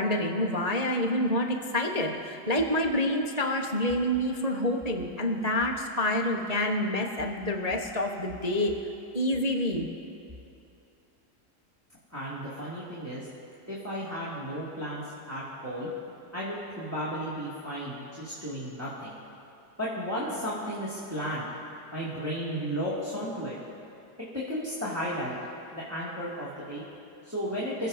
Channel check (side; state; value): left; late; 1.8 ms